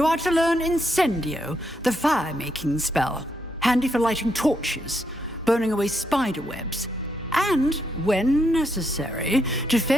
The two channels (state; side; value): normal; both; correlation 0.78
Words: are to learn Incendio, the fire-making spell, handy for lighting torches, burning away spider webs, and, when necessary,